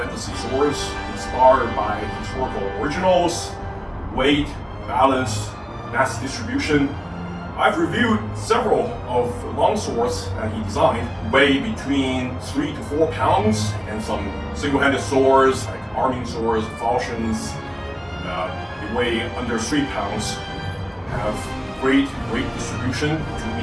swords inspired by historical originals, weight, balance, mass distribution. I've reviewed several of the longswords that he designed, weigh between 3 to 4 pounds, and some single-handed swords like arming swords, falchions, they weigh under 3 pounds, have great weight distribution to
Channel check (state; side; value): identical; both; correlation 1.00